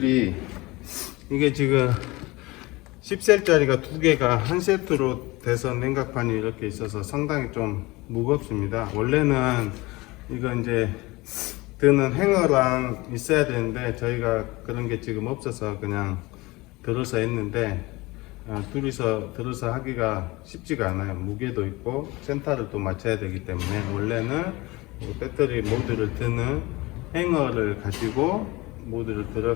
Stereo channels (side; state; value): right; quieter; 22.1 dB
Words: 이게 지금 10셀짜리가 두 개가 한 세트로 돼서 냉각판이 이렇게 있어서 상당히 좀 무겁습니다. 원래는 이거 이제 드는 행어랑 있어야 되는데 저희가 그런 게 지금 없어서 그냥 들어서 했는데 둘이서 들어서 하기가 쉽지가 않아요. 무게도 있고 센터를 또 맞춰야 되기 때문에 원래는 배터리 모듈을 드는 행어를 가지고 모듈을